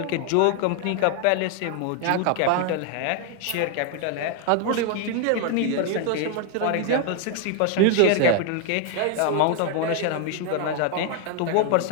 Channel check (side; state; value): both; different; correlation 0.00